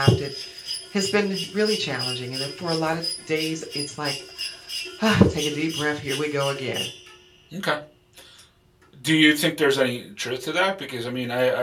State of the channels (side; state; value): both; identical; correlation 1.00